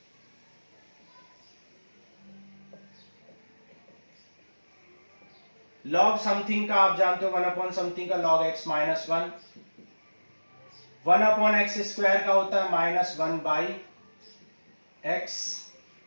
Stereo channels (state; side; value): inverted; both; correlation -1.00